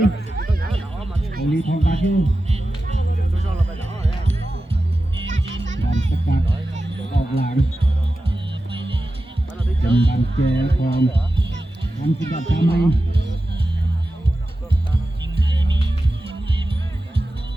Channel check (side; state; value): both; normal; correlation 0.93